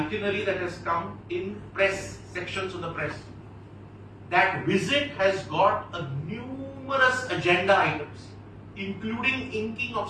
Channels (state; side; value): identical; both; correlation 1.00